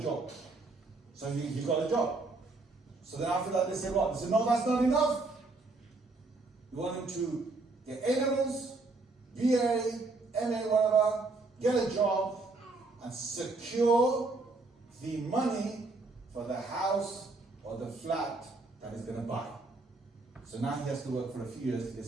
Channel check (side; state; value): left; quieter; 3.4 dB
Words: So he got a job. So then after that, they said, what? They said, no, that's not enough. We want him to get A-levels, BA, MA, whatever, get a job, and secure the money for the house or the flat that he's going to buy. So now he has to work for a few years till he